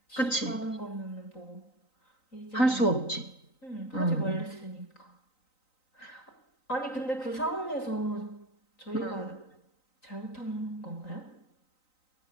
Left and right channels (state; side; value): late; right; 3.9 ms